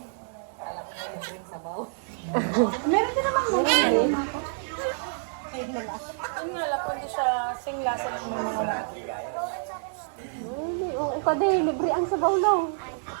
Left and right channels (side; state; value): left; silent; digital silence